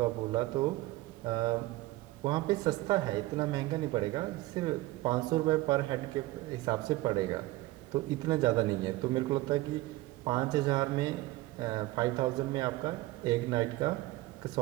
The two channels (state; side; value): quieter; left; 18.6 dB